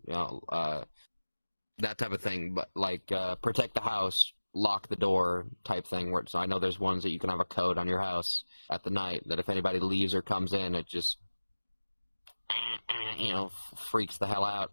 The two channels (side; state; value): both; inverted; correlation -1.00